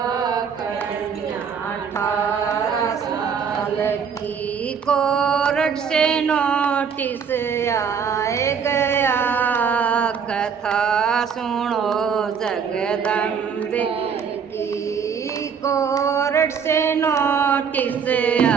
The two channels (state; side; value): quieter; left; 6.7 dB